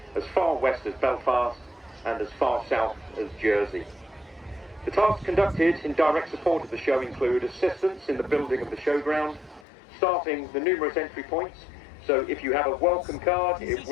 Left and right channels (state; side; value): drops out; right; at 9.7 s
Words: as far west as Belfast and as far south as Jersey. The tasks conducted in direct support of the show include assistance in the building of the showground, staffing the numerous entry points, so if you have a welcome card, it